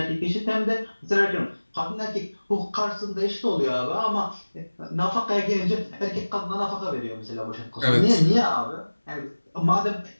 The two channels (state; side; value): inverted; both; correlation -1.00